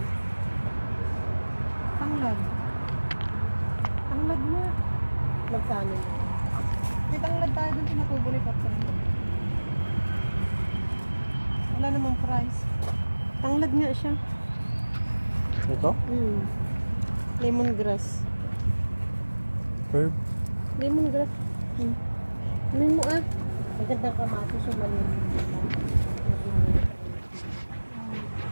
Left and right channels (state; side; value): inverted; both; correlation -1.00